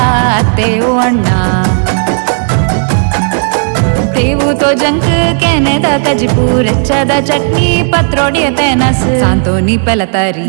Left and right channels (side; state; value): left; silent; digital silence